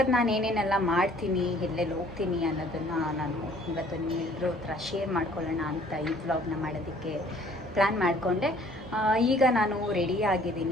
ನಾನು ಏನೇನೆಲ್ಲ ಮಾಡ್ತೀನಿ, ಎಲ್ಲೆಲ್ಲಿ ಹೋಗ್ತೀನಿ ಅನ್ನೋದನ್ನು ನಾನು ಇವತ್ತು ಎಲ್ಲರೂ ಹತ್ರ ಶೇರ್ ಮಾಡ್ಕೊಳ್ಳೋಣ ಅಂತ ಈ ವ್ಲಾಗ್ನ ಮಾಡೋದಕ್ಕೆ ಪ್ಲ್ಯಾನ್ ಮಾಡಿಕೊಂಡೆ. ಈಗ ನಾನು ರೆಡಿ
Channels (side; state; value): both; normal; correlation 0.56